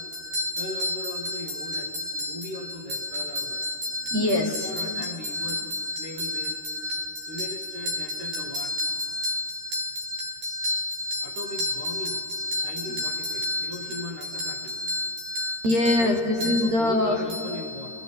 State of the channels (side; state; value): left; late; 13 ms